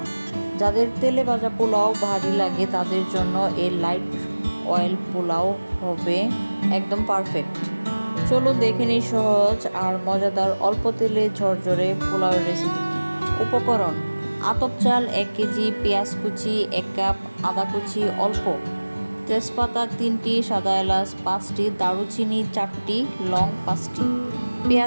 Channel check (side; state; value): both; inverted; correlation -1.00